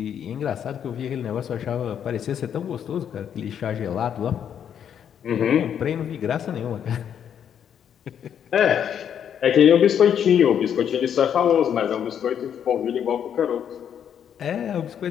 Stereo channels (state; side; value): quieter; right; 8.8 dB